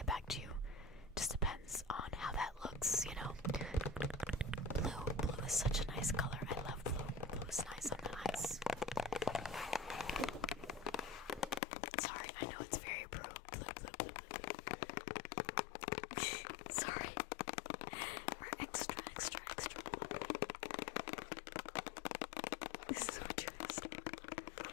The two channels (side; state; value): right; drops out; at 11.6 s